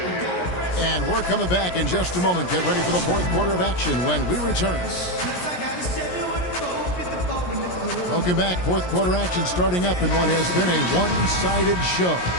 And we're coming back in just a moment. Get ready for the fourth quarter of action when we return. Welcome back. Fourth quarter action starting up in what has been a one-sided show.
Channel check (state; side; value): late; right; 17 ms